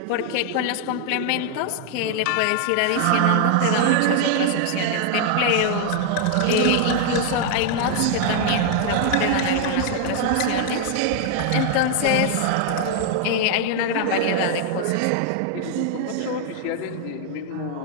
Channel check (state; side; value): different; both; correlation 0.00